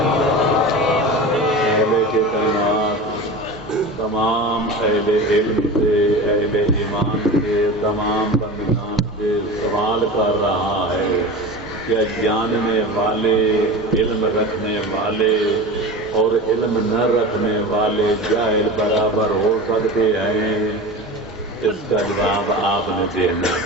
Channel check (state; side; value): normal; both; correlation 0.30